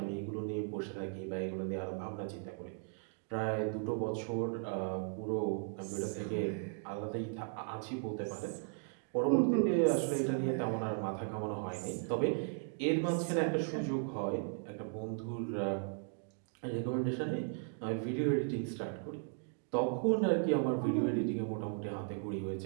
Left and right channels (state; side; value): silent; left; 53 dB below the other